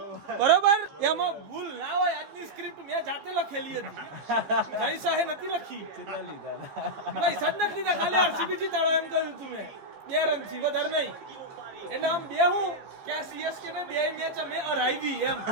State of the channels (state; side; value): late; left; 14 ms